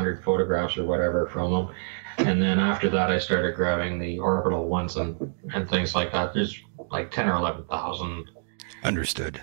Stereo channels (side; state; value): left; silent; digital silence